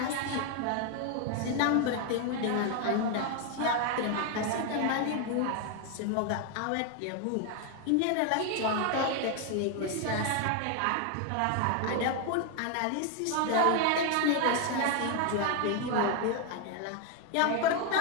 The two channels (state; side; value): different; both; correlation 0.01